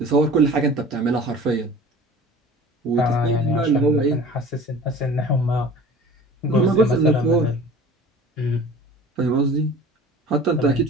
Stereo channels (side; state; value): both; normal; correlation 0.42